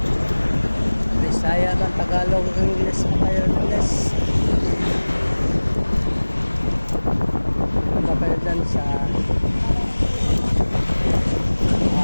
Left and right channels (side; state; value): both; inverted; correlation -1.00